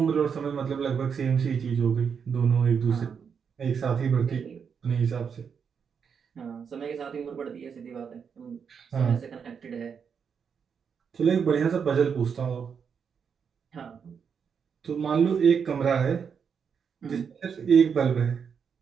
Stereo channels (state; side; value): quieter; left; 6.7 dB